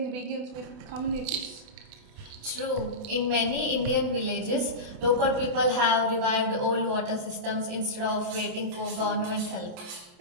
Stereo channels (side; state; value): left; late; 28 ms